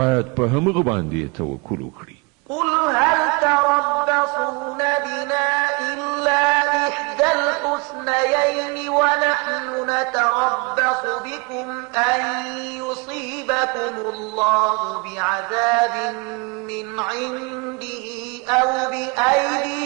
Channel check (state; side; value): quieter; left; 29.0 dB